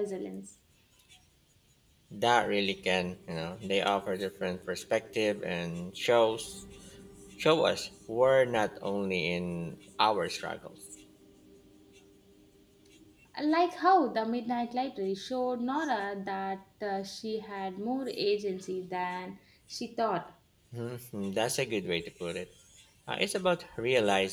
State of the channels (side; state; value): both; identical; correlation 1.00